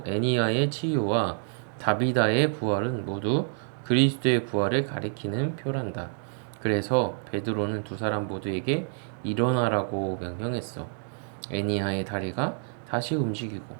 애니야의 치유와 다비다의 부활은 모두 그리스도의 부활을 가리키는 표란다. 그래서 베드로는 두 사람 모두에게 일어나라고 명령했어. 애니야의 다리가 다시 움직이고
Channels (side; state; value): left; silent; 60 dB below the other